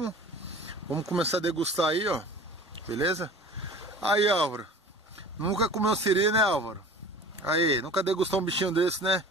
Vamos começar a degustar aí, ó. Beleza? Aí, Álvaro. Nunca comeu siri, né, Álvaro? Aí, nunca degustou um bichinho desse, né?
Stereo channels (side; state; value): both; normal; correlation 0.42